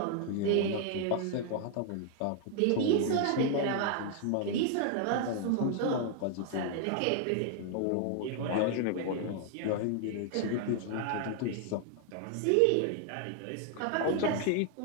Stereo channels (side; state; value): both; different; correlation 0.00